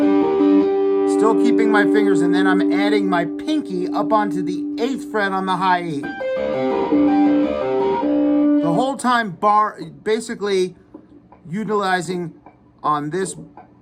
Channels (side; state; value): both; identical; correlation 1.00